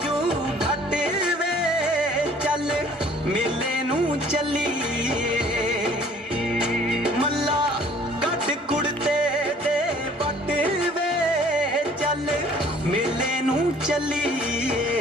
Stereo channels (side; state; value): both; normal; correlation 0.55